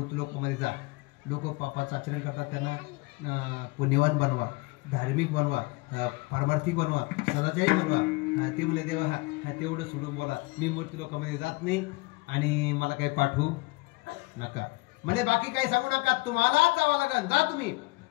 लोकांमध्ये जा, लोक पापाचं आचरण करतात, त्यांना पुण्यवान बनवा, धार्मिक बनवा, पारमार्थिक बनवा, सदाचारी बनवा. ते म्हणले देवा हा तेवढं सोडून बोला, मी मूर्ती लोकांमध्ये जात नाही आणि मला काही पाठवू नका. म्हणजे बाकी काही सांगू नका, तुम्हालाच जावं लागेल, जा तुम्ही.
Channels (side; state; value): right; quieter; 25.0 dB